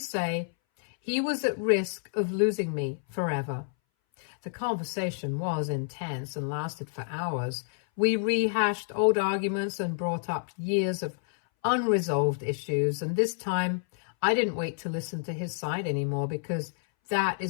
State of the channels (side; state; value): right; silent; 59 dB below the other